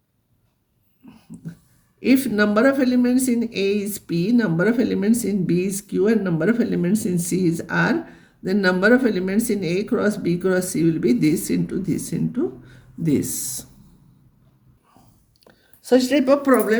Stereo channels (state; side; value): identical; both; correlation 1.00